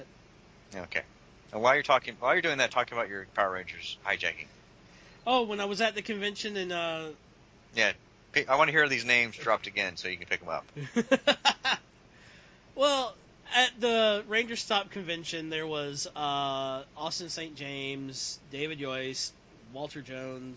Okay. And while you're doing that, talk about your Power Rangers hijacking. Oh, when I was at the convention and Yeah. I want to hear these names dropped again so you can pick them up. well, at the Ranger Stop convention, there was Austin St. James, David Yoist, Walter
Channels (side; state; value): both; identical; correlation 1.00